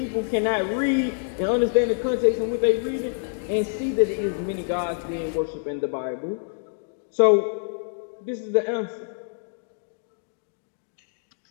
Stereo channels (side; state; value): right; silent; digital silence